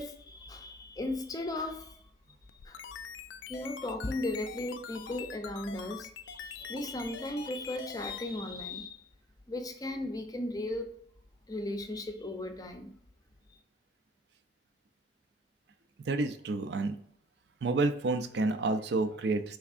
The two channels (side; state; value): both; normal; correlation 0.55